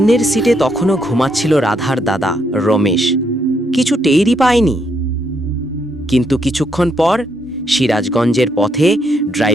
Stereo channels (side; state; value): both; normal; correlation 0.75